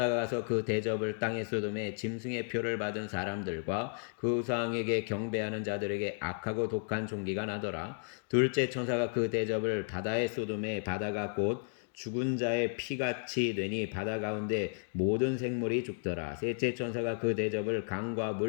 가서 그 대접을 땅에 쏟음에 짐승의 표를 받은 사람들과 그 우상에게 경배하는 자들에게 악하고 독한 종기가 나더라. 둘째 천사가 그 대접을 바다에 쏟음에 바다가 곧 죽은 자의 피같이 되니 바다 가운데 모든 생물이 죽더라. 셋째 천사가 그 대접을 강과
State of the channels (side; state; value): right; silent; 56 dB below the other